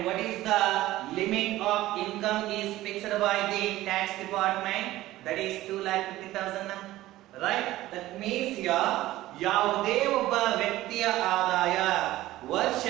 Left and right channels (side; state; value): left; quieter; 16.1 dB